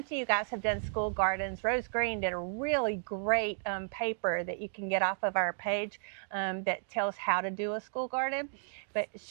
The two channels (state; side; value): silent; left; digital silence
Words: of you guys have done school gardens. Rose Green did a really great paper that you can get off of our page that tells how to do a school garden. But